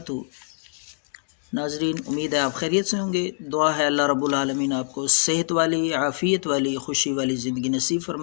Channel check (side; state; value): right; silent; digital silence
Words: ناظرین، امید ہے آپ خیریت سے ہوں گے۔ دعا ہے اللہ رب العالمین آپ کو صحت والی، عافیت والی، خوشی والی زندگی نصیب